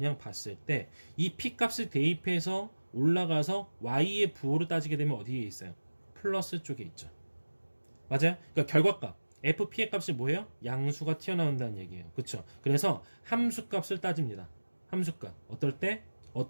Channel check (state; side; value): inverted; both; correlation -1.00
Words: 봤을 때 이 p값을 대입해서 올라가서 y의 부호를 따지게 되면 어디에 있어요? 플러스 쪽에 있죠. 맞아요? 그러니까 결과값 fp의 값이 뭐예요? 양수가 튀어나온다는 얘기예요. 그쵸? 그래서 함수값을 따집니다. 함수값 어떨 때?